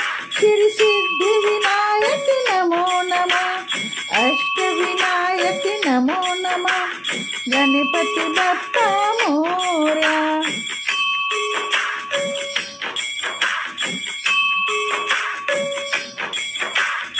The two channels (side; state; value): both; identical; correlation 1.00